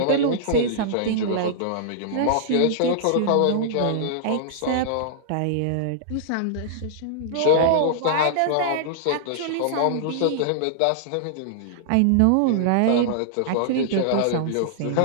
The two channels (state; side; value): different; both; correlation -0.01